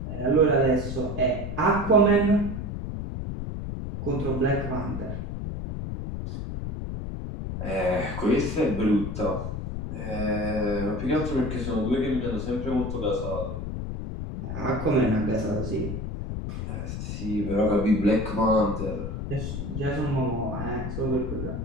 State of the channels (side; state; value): left; noise; rumble, 5 dB below the sound